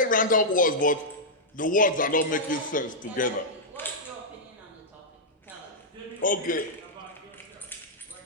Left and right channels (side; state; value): both; normal; correlation -0.08